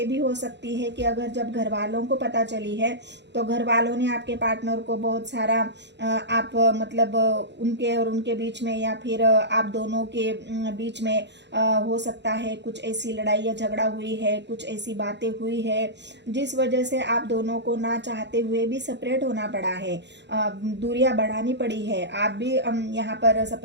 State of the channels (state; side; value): late; left; 0.51 ms